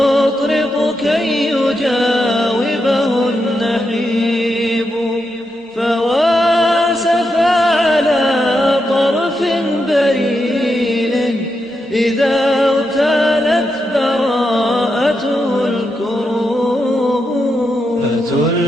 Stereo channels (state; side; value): normal; both; correlation 0.84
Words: كي يجاوبه النحيب، فواسف على طرف بريل إذا اغتالت براءته الكروب.